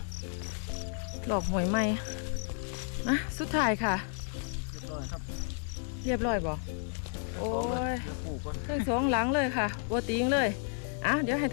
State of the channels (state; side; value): silent; right; 56 dB below the other